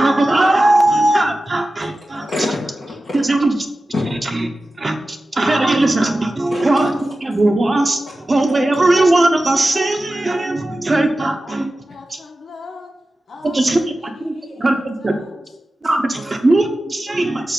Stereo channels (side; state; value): both; normal; correlation 0.95